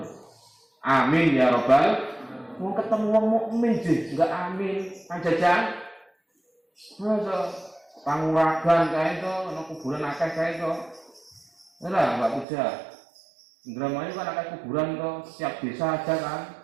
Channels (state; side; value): drops out; left; at 12.5 s